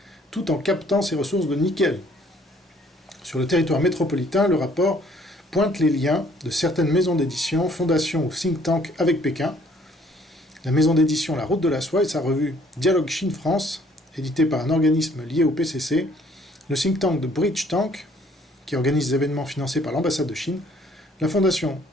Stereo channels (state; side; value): normal; both; correlation 0.61